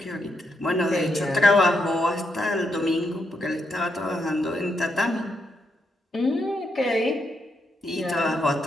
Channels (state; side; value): normal; both; correlation 0.80